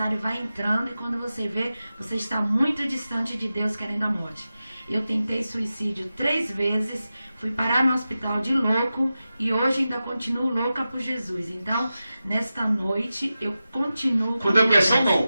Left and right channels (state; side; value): inverted; both; correlation -0.93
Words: vai entrando, e quando você vê, você está muito distante de Deus, querendo a morte. Eu tentei suicídio 3 vezes, fui parar no hospital de louco, e hoje ainda continuo louca por Jesus. Então, nesta noite, eu continuo... Com depressão